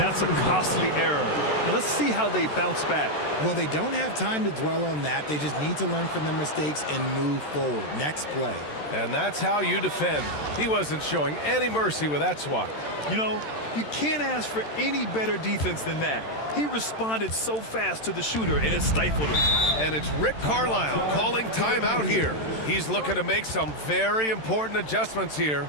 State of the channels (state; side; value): late; right; 13 ms